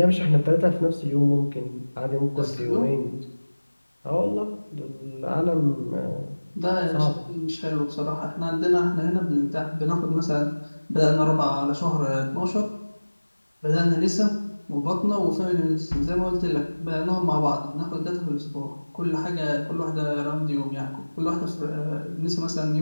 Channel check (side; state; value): both; inverted; correlation -1.00